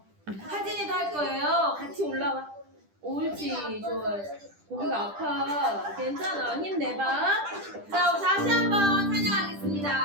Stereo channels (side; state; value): left; late; 10 ms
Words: 하진이도 할 거예요. 같이 올라와. 옳지, 좋아. 고기가 아파. 괜찮아. 힘내봐. 자, 우리 다시 한번